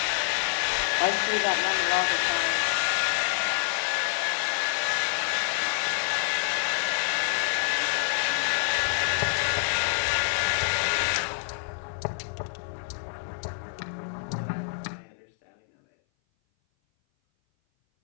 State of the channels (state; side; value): silent; right; 58 dB below the other